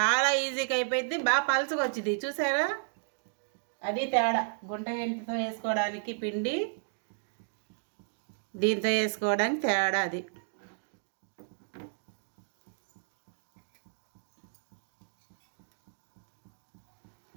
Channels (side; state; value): left; silent; digital silence